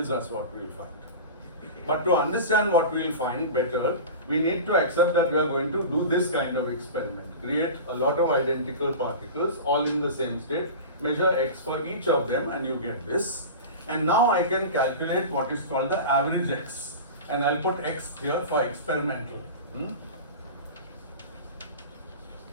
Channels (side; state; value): both; inverted; correlation -0.31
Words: us what we'll find. But to understand what we'll find better, we need to accept that we are going to do this kind of experiment. Create a lot of identical particles, all in the same state, measure x for each of them, and you get this. And now I can calculate what is called the average x. And I'll put x here for experimental.